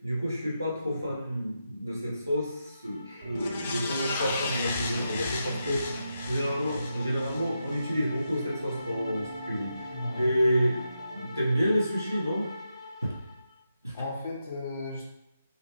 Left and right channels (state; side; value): inverted; both; correlation -0.86